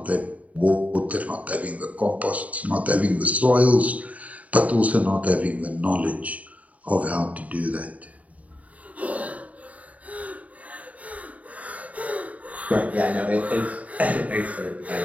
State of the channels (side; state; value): left; late; 0.069 ms